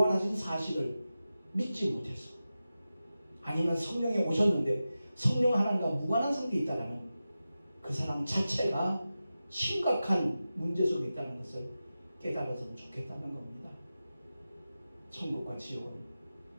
사실을 믿지 못해서 아니면 성령이 오셨는데 성령 하나님과 무관한 상태에 있다는 그 사람 자체가 심각한 문제 속에 있다는 것을 깨달았으면 좋겠다는 겁니다. 천국과 지옥은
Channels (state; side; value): inverted; both; correlation -0.93